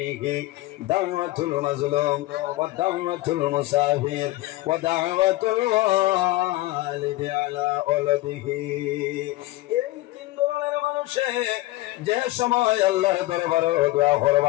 দাওয়াতুল মাজলুম ওয়া দাওয়াতুল মুসাফির ওয়া দাওয়াতুল ওয়ালিদি আলা ওয়ালাদিহি। এই তিন ধরনের মানুষে যে সময় আল্লাহর দরবারে দোয়া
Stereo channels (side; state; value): right; quieter; 18.3 dB